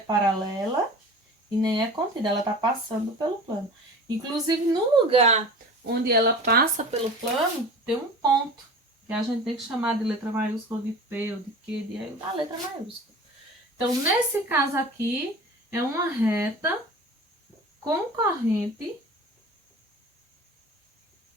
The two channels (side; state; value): both; normal; correlation 0.38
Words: e nem é contida, ela tá passando pelo plano. Inclusive, no lugar onde ela passa pelo plano, tem um ponto, que a gente tem que chamar de letra maiúscula, de P ou de Q, da letra maiúscula. Então, nesse caso aqui, é uma reta concorrente